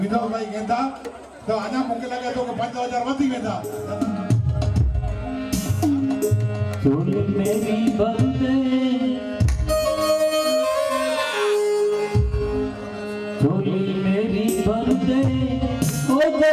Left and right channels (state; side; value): identical; both; correlation 1.00